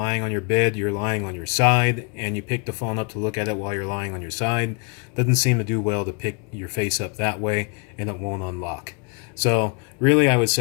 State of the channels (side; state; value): right; quieter; 34.5 dB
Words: on your bed, you're lying on your side, and you pick the phone up to look at it while you're lying on your side. Doesn't seem to do well to pick your face up that way, and it won't unlock. So really, I would